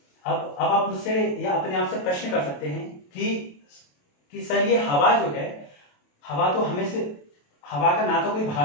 अब आप मुझसे या अपने आप से प्रश्न कर सकते हैं कि सर, ये हवा जो है, हवा तो हमें से, हवा का ना तो कोई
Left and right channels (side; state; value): right; late; 28 ms